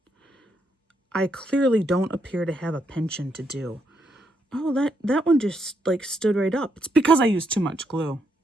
I clearly don't appear to have a penchant to do. Oh, that one just like stood right up. It's because I used too much glue.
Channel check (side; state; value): both; normal; correlation 0.77